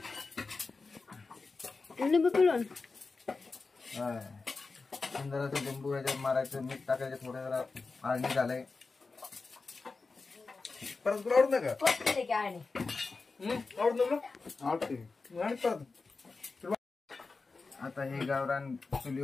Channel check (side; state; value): right; quieter; 4.1 dB